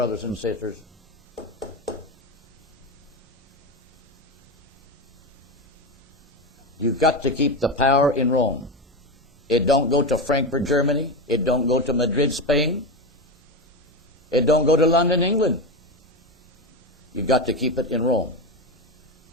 and sisters. You've got to keep the power in Rome. It don't go to Frankfurt, Germany. It don't go to Madrid, Spain. It don't go to London, England. You've got to keep it in Rome.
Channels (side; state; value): both; normal; correlation 0.17